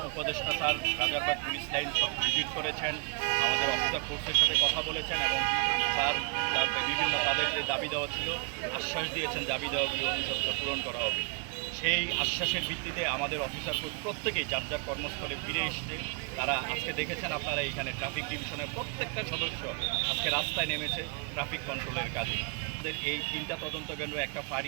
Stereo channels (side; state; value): left; quieter; 35.9 dB